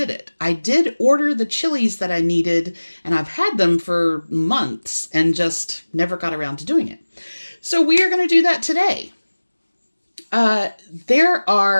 it. I did order the chilies that I needed, and I've had them for months and just never got around to doing it. So we are going to do that today. There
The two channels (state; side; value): inverted; both; correlation -1.00